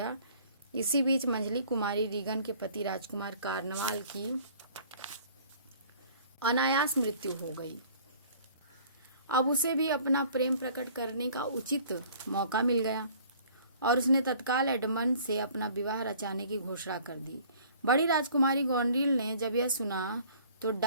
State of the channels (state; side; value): inverted; both; correlation -0.52